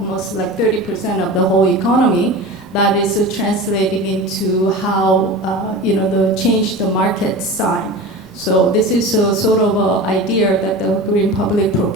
like 30% of the whole economy, that is translating into how, the change the market sign. So this is a sort of an idea that the green public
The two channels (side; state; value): both; normal; correlation 0.31